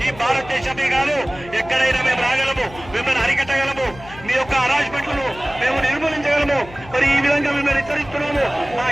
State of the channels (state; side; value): noise; left; hum, 18 dB below the sound